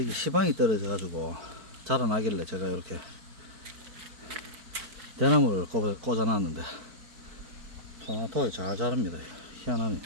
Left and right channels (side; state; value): left; late; 4.5 ms